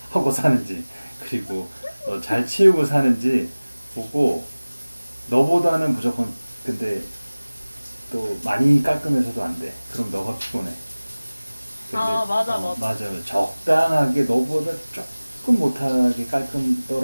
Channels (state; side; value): inverted; both; correlation -0.99